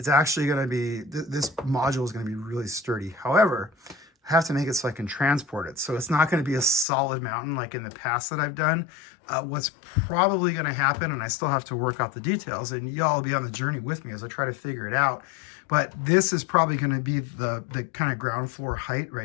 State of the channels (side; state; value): right; drops out; at 6.9 s